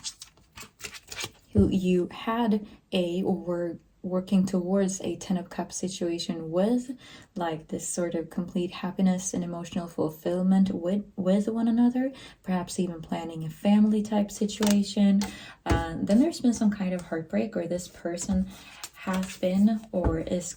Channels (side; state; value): both; identical; correlation 1.00